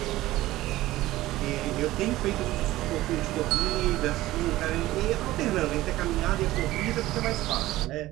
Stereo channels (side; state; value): left; quieter; 16.6 dB